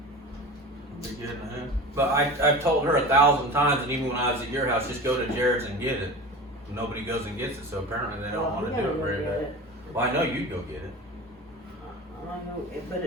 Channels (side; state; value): both; normal; correlation 0.33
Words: Be good in hand. But I've told her 1,000 times, and even when I was at your house, just go to Jared's and get it. Nobody goes and gets it, so apparently they don't want to do it very bad. Well, I know you'd go get it. I know,